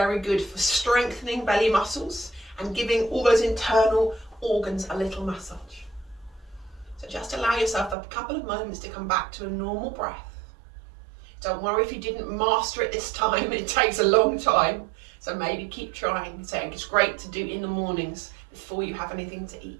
good for strengthening belly muscles and giving all those internal organs a little massage. So just allow yourself a couple of moments to come back to a normal breath. Don't worry if you didn't master it this time, it takes a long time. So maybe keep trying. So it's great to do in the mornings before you have anything to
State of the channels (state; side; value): drops out; left; at 8.0 s